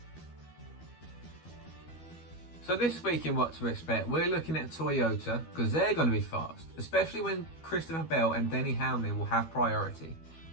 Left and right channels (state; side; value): late; right; 12 ms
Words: So this week in What to Expect, we're looking at Toyota because they're going to be fast, especially when Christopher Bell and Denny Hamlin will have priority.